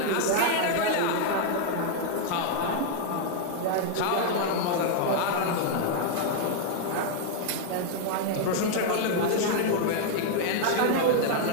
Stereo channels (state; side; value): different; both; correlation 0.00